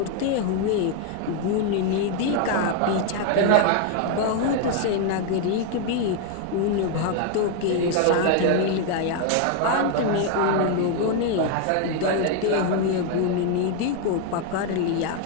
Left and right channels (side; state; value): both; different; correlation 0.00